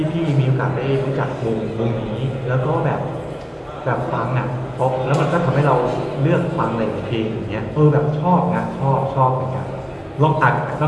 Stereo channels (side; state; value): both; identical; correlation 1.00